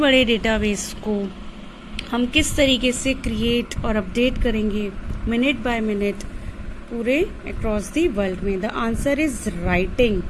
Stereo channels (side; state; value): both; identical; correlation 1.00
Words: डेटाबेस को हम किस तरीके से क्रिएट और अपडेट करेंगे मिनट बाय मिनट पूरे अक्रॉस दी वर्ल्ड में? The answer is writing.